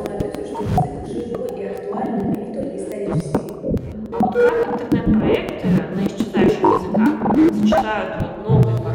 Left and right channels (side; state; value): both; identical; correlation 1.00